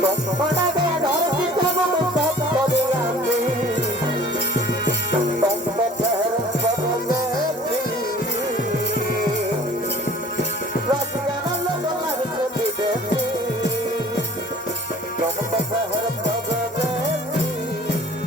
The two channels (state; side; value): normal; both; correlation 0.49